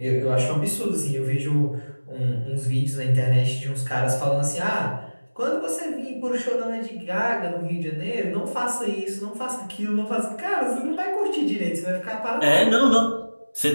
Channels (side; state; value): both; inverted; correlation -1.00